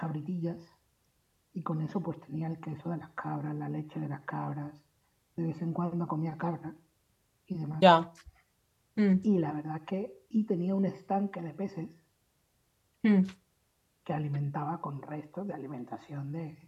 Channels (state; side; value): identical; both; correlation 1.00